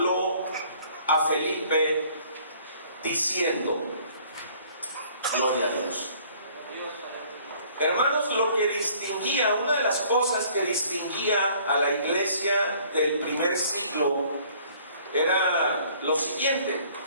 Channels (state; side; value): inverted; both; correlation -0.56